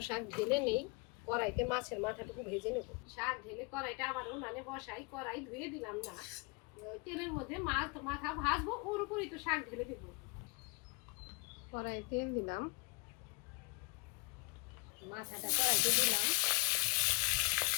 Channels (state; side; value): quieter; right; 28.4 dB